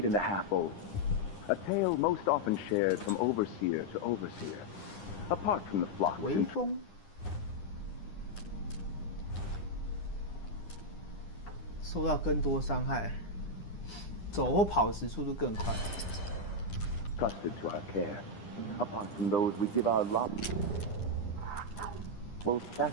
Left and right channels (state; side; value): late; right; 9.9 ms